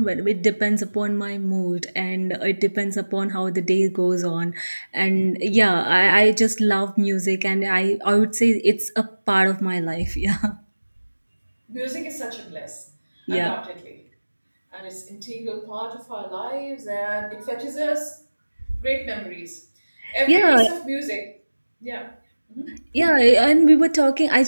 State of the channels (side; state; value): both; inverted; correlation -1.00